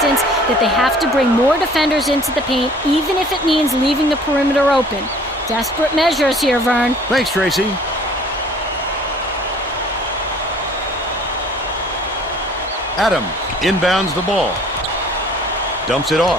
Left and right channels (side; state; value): both; normal; correlation 0.53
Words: that they have to bring more defenders into the paint, even if it means leaving the perimeter open. Desperate measures here, Vern. Thanks, Tracy. Adams inbounds the ball. Dumps it